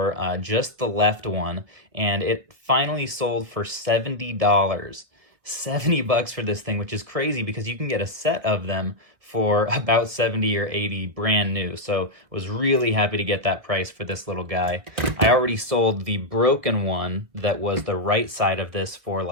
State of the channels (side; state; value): left; late; 1.4 ms